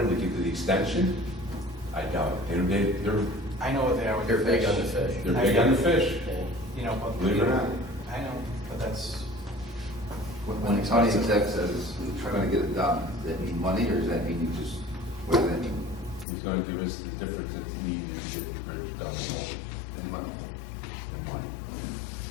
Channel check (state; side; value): drops out; right; at 16.2 s